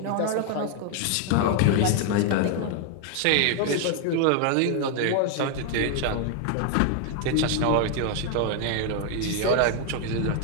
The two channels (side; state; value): both; different; correlation 0.00